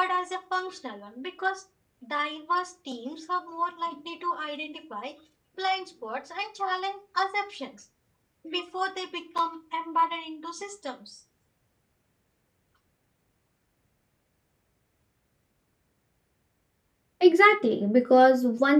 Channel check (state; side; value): identical; both; correlation 1.00